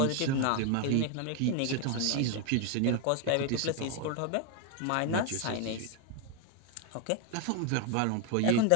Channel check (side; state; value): both; different; correlation 0.01